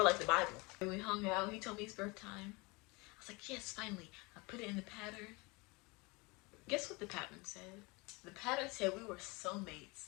like the Bible. And we hung out. He told me his birth time. I was like, yes, finally. I put it in the pattern. Guess what the pattern said? The pattern said we were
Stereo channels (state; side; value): quieter; right; 26.5 dB